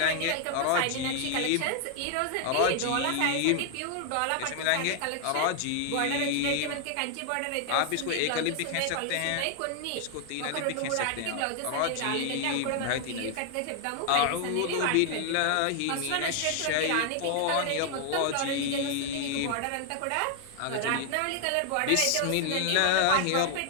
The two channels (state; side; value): different; both; correlation 0.00